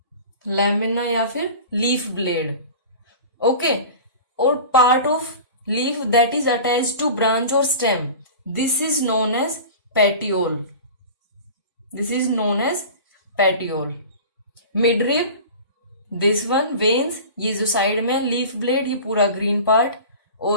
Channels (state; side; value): inverted; both; correlation -0.37